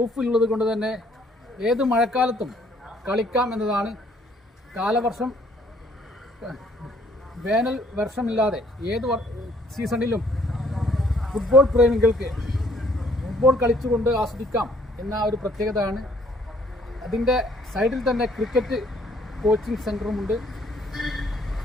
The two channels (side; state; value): both; normal; correlation 0.63